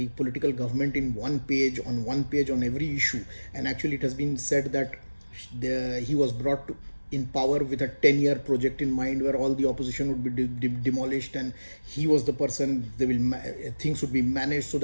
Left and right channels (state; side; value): inverted; both; correlation -1.00